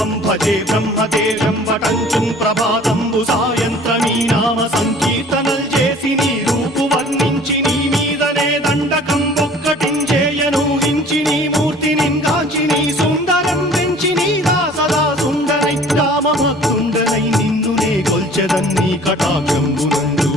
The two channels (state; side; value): normal; both; correlation 0.50